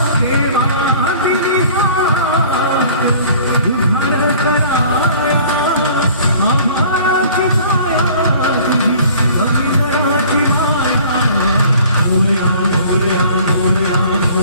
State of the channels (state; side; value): inverted; both; correlation -0.50